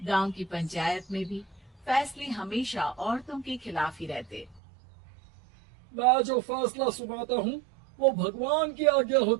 गांव की पंचायत में भी फैसले हमेशा औरतों के खिलाफ ही रहते। मैं जो फैसला सुनाता हूँ वो भगवान की आज्ञा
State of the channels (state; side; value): drops out; left; at 4.6 s